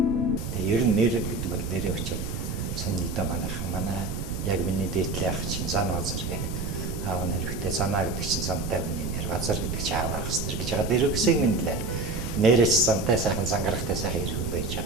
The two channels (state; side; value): noise; right; rumble, 4 dB below the sound